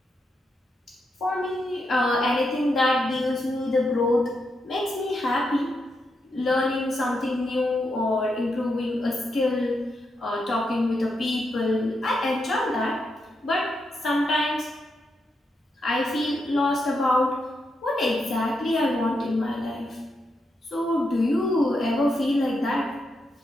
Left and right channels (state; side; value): normal; both; correlation 0.83